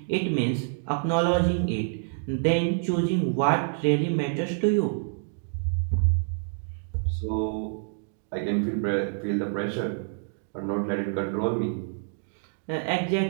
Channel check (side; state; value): left; silent; digital silence